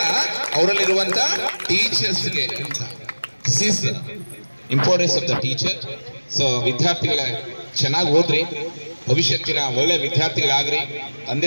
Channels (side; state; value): both; inverted; correlation -1.00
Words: ಅವರಲ್ಲಿರುವಂತ ಟೀಚರ್ಸ್ಗೆ ಅಂತ. This is importance of the teacher. So ವಿದ್ಯಾರ್ಥಿಗಳ ಚೆನ್ನಾಗಿ ಓದ್ರಿ, ಭವಿಷ್ಯತ್ತಿನ ಒಳ್ಳೆ ವಿದ್ಯಾರ್ಥಿಗಳಾಗ್ರಿ,